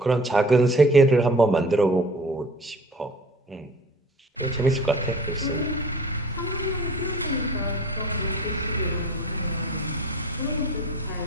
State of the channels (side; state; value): both; normal; correlation 0.45